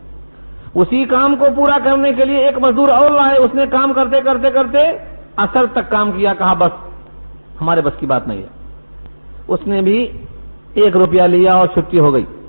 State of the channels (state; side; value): inverted; both; correlation -1.00